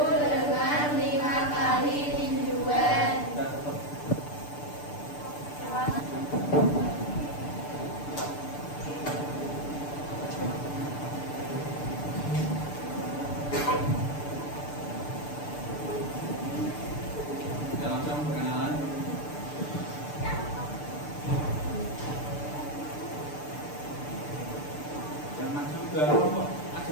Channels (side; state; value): right; late; 6.8 ms